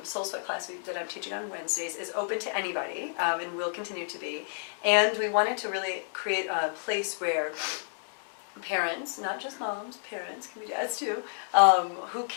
SOULSWEAT class that I'm teaching on Wednesdays is open to anybody and will continue to be. And we wanted to really create a place where parents, not just moms, parents, can be dads too, who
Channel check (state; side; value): silent; right; digital silence